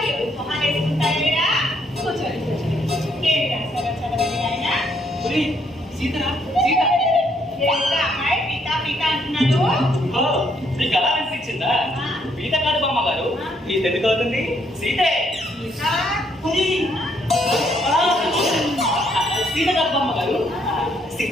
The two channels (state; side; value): normal; both; correlation 0.71